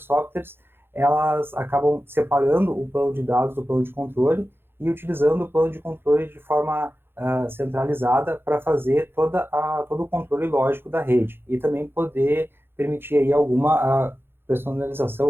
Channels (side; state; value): left; late; 0.11 ms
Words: softwares, elas acabam separando o plano de dados do plano de controle e utilizando o plano de controle de forma centralizada para fazer todo o controle lógico da rede e também poder permitir aí alguma personalização,